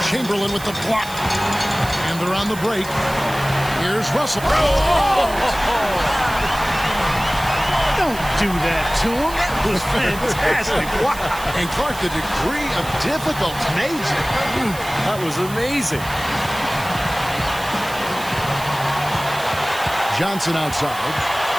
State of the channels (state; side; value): noise; right; hiss, 14 dB below the sound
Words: Chamberlain with the block. And they're on the break. Here's Russell. Don't do that to him. That was fantastic. Wow. And Clark, the degree of difficulty. Amazing. That was amazing. Johnson outside.